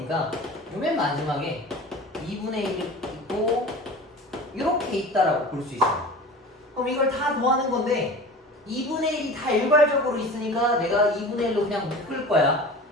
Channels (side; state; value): both; normal; correlation 0.37